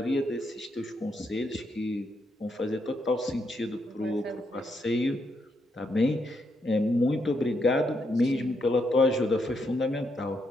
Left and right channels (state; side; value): normal; both; correlation 0.79